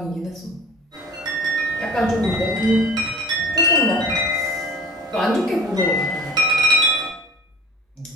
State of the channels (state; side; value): normal; both; correlation 0.43